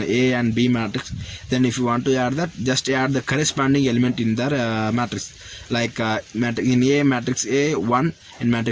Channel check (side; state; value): both; identical; correlation 1.00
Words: and B matrix, then if you want to add that, just add the corresponding element in the matrix. Like in A matrix A 1, in